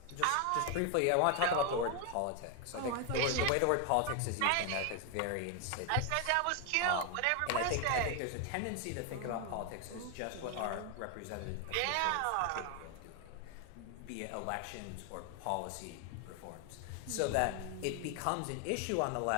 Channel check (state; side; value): different; both; correlation 0.01